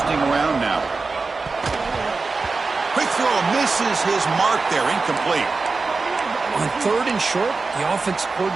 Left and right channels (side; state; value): left; quieter; 4.1 dB